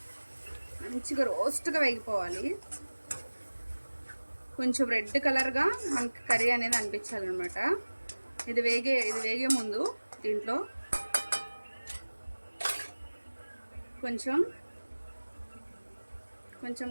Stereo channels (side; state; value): both; inverted; correlation -1.00